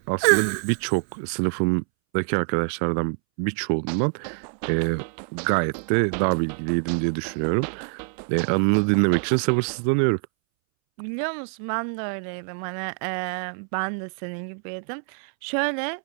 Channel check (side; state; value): left; silent; 62 dB below the other